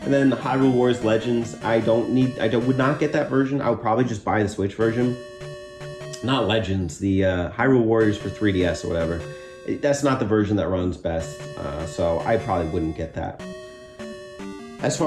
And then Hyrule Warriors Legends. I would not get that version. I would probably just buy the Switch version. Not Legends, the Hyrule Warriors for 3DS or whatever. That's not the version that runs best, so I probably wouldn't get that. As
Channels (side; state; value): both; identical; correlation 1.00